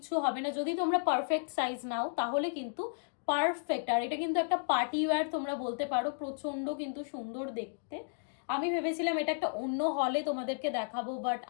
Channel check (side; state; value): right; silent; digital silence